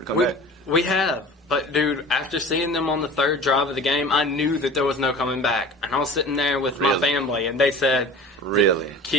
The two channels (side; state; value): both; normal; correlation 0.39